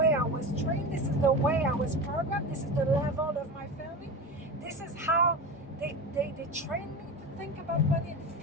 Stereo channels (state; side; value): normal; both; correlation 0.25